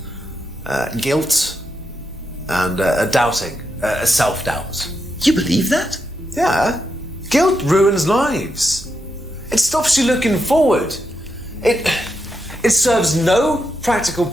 guilt, and a doubting, a self-doubt. You believe that? Yeah. Guilt ruins lives. It stops you looking forward. It serves no practical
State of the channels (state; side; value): normal; both; correlation 0.83